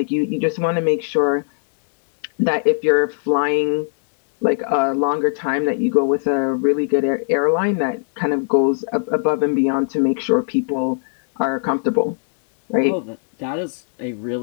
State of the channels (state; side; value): silent; right; digital silence